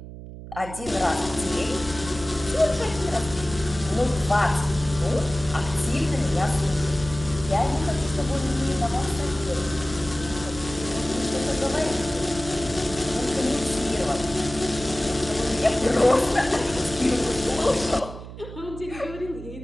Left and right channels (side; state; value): right; noise; hum, 13 dB below the sound